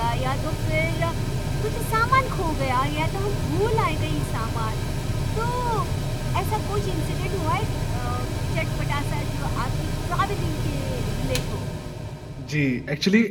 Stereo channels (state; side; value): identical; both; correlation 1.00